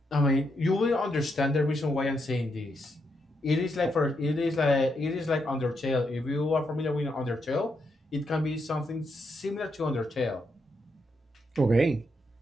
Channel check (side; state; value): both; normal; correlation 0.80